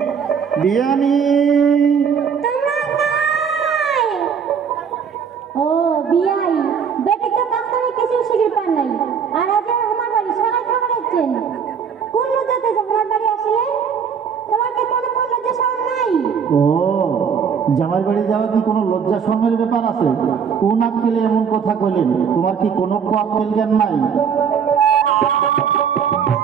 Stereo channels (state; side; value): quieter; left; 6.9 dB